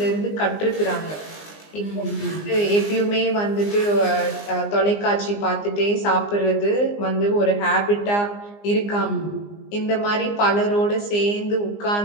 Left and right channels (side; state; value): right; late; 20 ms